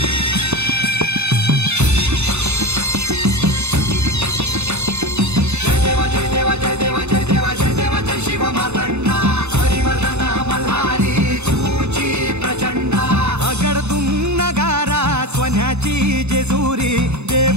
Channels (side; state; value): left; late; 0.81 ms